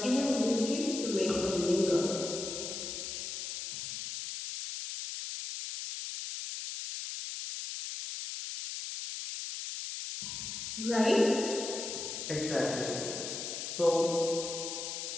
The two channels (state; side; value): noise; left; hiss, 5 dB below the sound